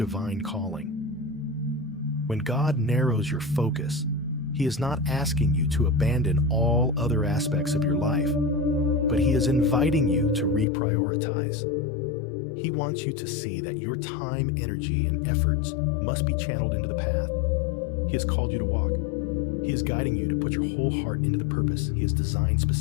calling. When God narrows your focus, He is not asking you to abandon all other aspects of your life, but He is inviting you to reprioritize. He wants you to see that your time, energy, and efforts must be channeled into the path He has called you to walk. He is guiding you to put your whole heart into the purpose He has designed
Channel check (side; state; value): right; drops out; at 10.7 s